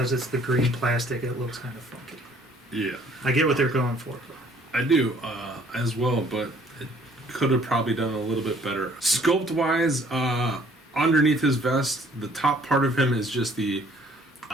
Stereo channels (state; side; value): normal; both; correlation 0.59